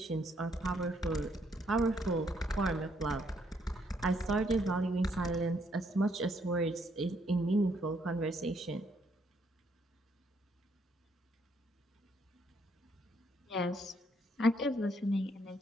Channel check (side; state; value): both; normal; correlation 0.72